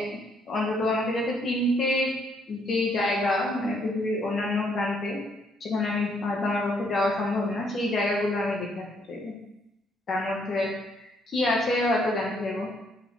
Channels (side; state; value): both; normal; correlation 0.70